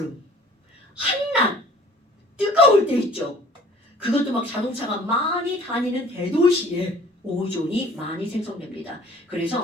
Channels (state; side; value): normal; both; correlation 0.51